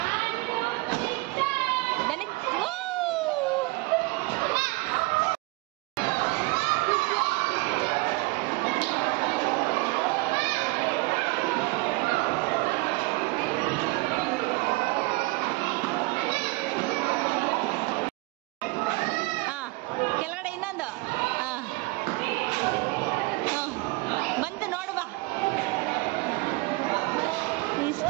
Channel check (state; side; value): quieter; left; 23.9 dB